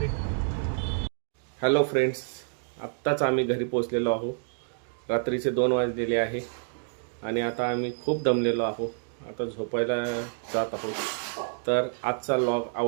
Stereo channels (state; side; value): silent; left; digital silence